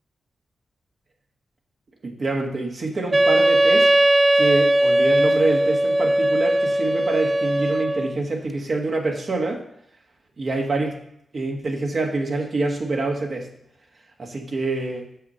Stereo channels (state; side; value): normal; both; correlation 0.96